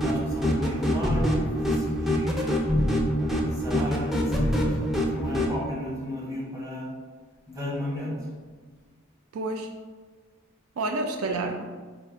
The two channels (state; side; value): normal; both; correlation 0.69